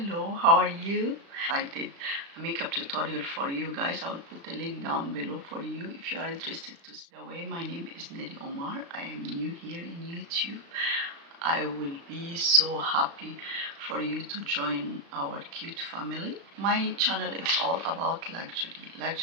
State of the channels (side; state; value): left; late; 36 ms